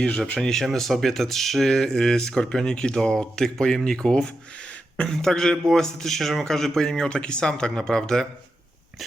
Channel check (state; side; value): normal; both; correlation 0.88